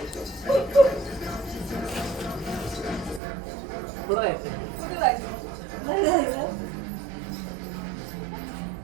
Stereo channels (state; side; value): drops out; left; at 3.2 s